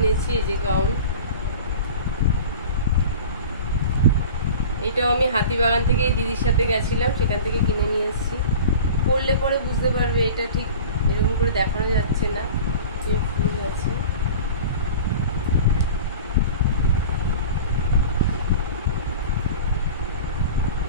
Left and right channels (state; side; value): inverted; both; correlation -0.37